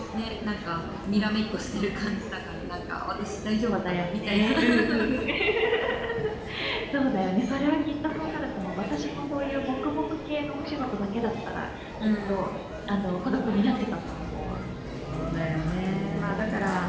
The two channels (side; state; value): both; identical; correlation 1.00